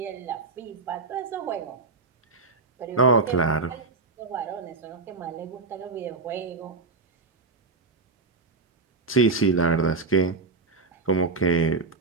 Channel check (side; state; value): left; quieter; 4.0 dB